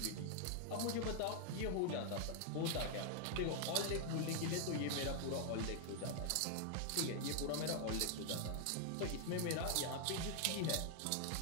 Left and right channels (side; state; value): both; different; correlation 0.00